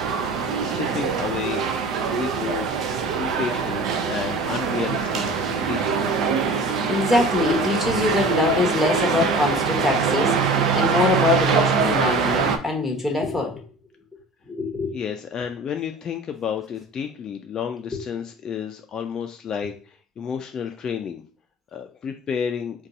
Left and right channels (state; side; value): normal; both; correlation 0.41